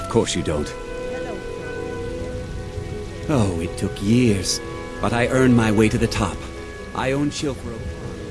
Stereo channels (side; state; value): both; identical; correlation 1.00